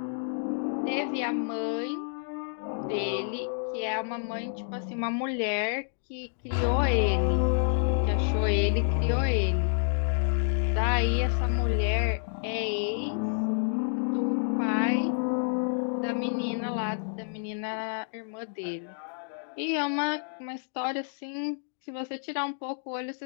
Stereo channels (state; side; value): silent; right; digital silence